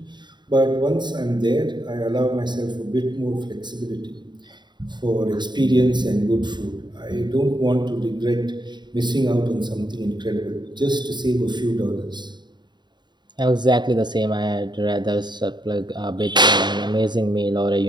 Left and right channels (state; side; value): late; left; 0.21 ms